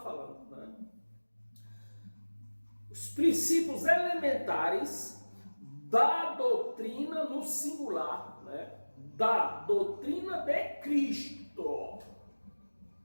né? Os princípios elementares da doutrina no singular, né? Da doutrina de Cristo.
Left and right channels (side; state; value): both; inverted; correlation -1.00